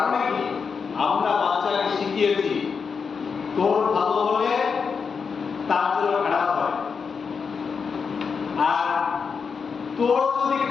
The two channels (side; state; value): right; quieter; 5.7 dB